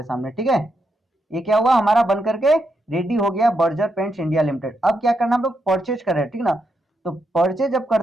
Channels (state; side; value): normal; both; correlation 0.82